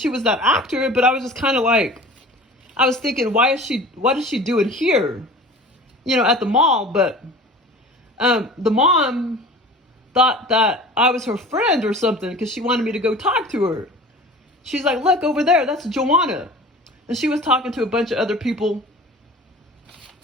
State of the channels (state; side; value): normal; both; correlation 0.41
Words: actor, but I was just kind of like, I was thinking, what is she doing here? At the mall. But the mom thought that I was her friend or something because she wanted me to go talk to her. She's like, look over there, that's Joanna. And she was talking to a bunch of other people